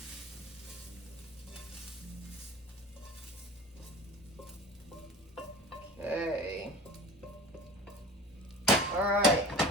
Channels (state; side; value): normal; both; correlation 0.40